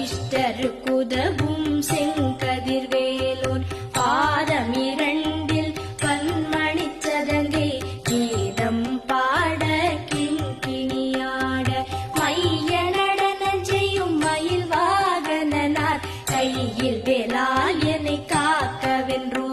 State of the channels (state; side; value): identical; both; correlation 1.00